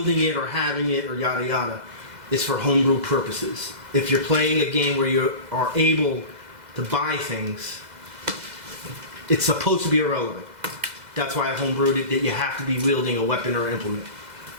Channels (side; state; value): left; late; 2.0 ms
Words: it or having it or yada yada. It's for homebrew purposes. If you're playing a game where you are able to buy things, it's supposed to be irrelevant. That's why I homebrewed it, that you have to be wielding a weapon or implement.